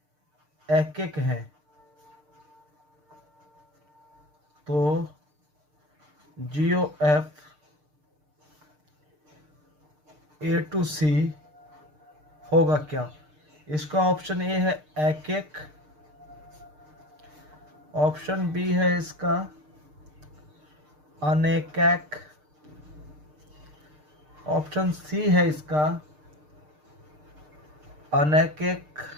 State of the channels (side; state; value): left; late; 6.6 ms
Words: एक हैं, तो GOF A टू C होगा क्या? इसका ऑप्शन ए है एक, ऑप्शन बी है इसका अनेक, ऑप्शन सी है इसका अनेक